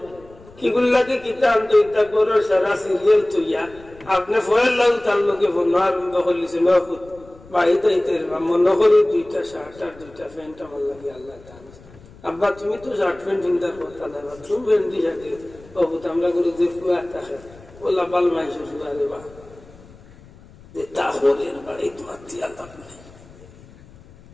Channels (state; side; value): noise; left; rumble, 23 dB below the sound